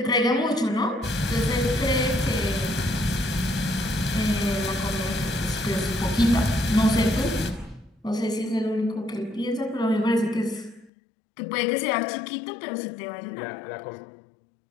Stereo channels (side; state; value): right; drops out; at 10.9 s